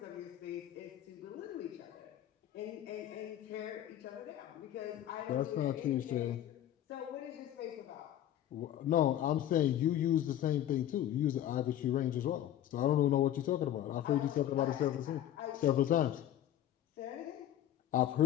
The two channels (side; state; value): right; quieter; 11.7 dB